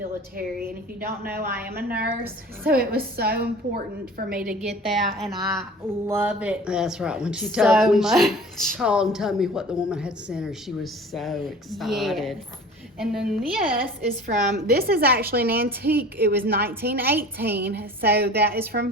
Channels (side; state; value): both; normal; correlation 0.42